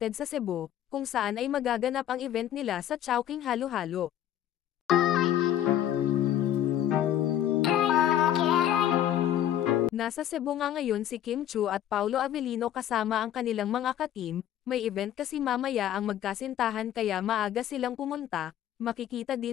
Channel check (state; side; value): quieter; right; 11.3 dB